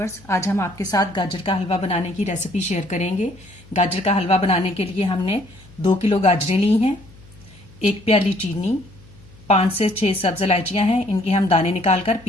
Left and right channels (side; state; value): left; noise; hum, 23 dB below the sound